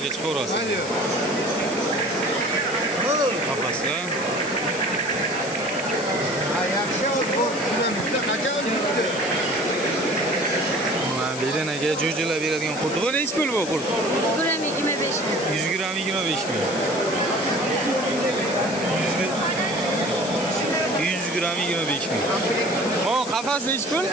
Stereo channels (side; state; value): left; noise; hiss, 10 dB below the sound